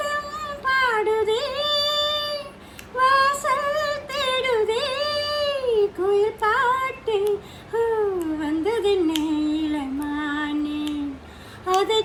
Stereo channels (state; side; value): identical; both; correlation 1.00